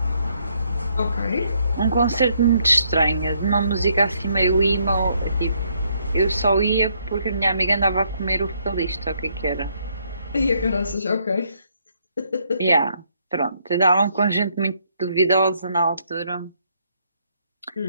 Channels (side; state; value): both; inverted; correlation -0.71